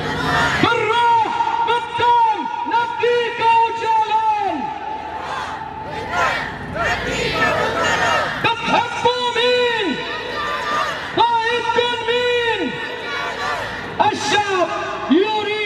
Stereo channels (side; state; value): both; identical; correlation 1.00